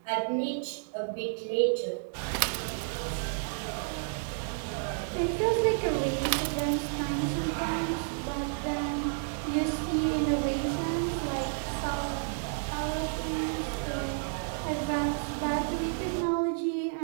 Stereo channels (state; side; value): silent; left; digital silence